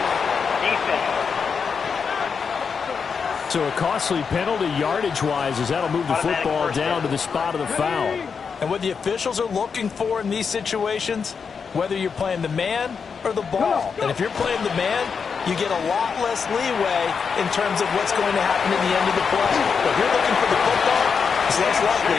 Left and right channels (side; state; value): right; quieter; 5.9 dB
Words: Defense. So a costly penalty yardage-wise as that'll move the football down to the spot of the foul. And what the officials are looking for in these situations, whether you're playing the man or the ball. And if you're playing the man, you get a lot less leeway in terms of what's going to happen at the end of the play. But if you're looking for the football, it's less likely